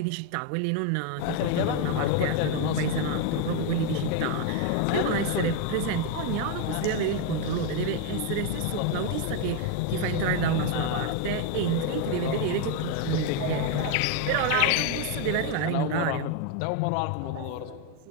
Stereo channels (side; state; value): both; different; correlation 0.01